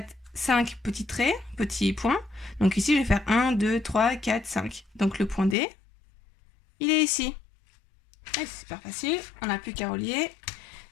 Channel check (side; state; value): right; drops out; at 5.6 s